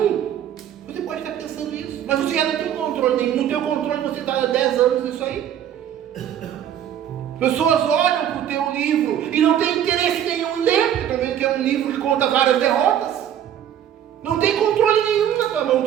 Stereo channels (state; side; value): quieter; left; 10.2 dB